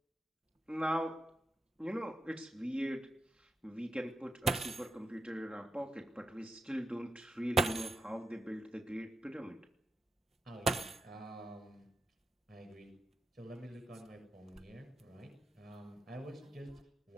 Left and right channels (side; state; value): both; normal; correlation 0.86